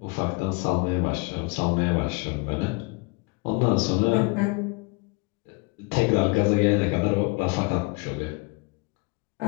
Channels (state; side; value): quieter; right; 28.6 dB